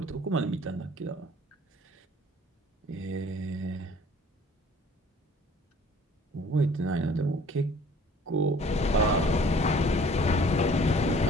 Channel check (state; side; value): normal; both; correlation 0.53